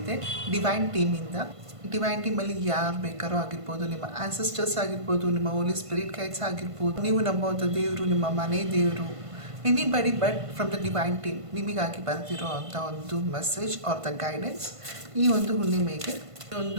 ಡಿವೈನ್ ಟೀಮಿಂದ. ಡಿವೈನ್ ಟೀಮಲ್ಲಿ ಯಾರು ಬೇಕಾರೋ ಆಗಿರ್ಬೋದು, ನಿಮ್ಮ ಆನ್ಸೆಸ್ಟರ್ಸ್ ಆಗಿರ್ಬೋದು, ನಿಮ್ಮ ಹೋಲಿ ಸ್ಪಿರಿಟ್ ಗೈಡ್ಸ್ ಆಗಿರ್ಬೋದು, ನೀವು ನಂಬುವಂಥ ದೇವರು, ನಿಮ್ಮ ಮನೆ ದೇವರು, anybody but from the divine team ನಿಮಗಾಗಿ ಬರ್ತಿರೋ ಅಂಥ ಒಂದು ಮೆಸೇಜ್ ಆರ್ ದ ಗೈಡೆನ್ಸ್ ಈ ಒಂದು ಹುಣ್ಣಿಮೆಗೆ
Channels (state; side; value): late; left; 1.5 ms